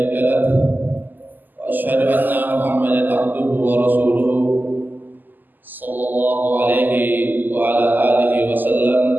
له وأشهد أن محمدا عبده ورسوله صلى الله عليه وعلى آله وسلم.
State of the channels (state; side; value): late; left; 0.087 ms